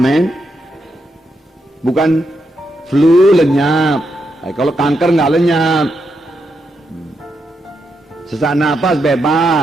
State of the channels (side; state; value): both; normal; correlation 0.82